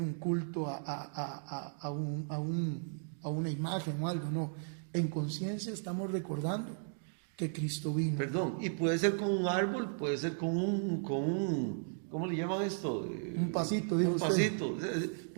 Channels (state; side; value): silent; left; digital silence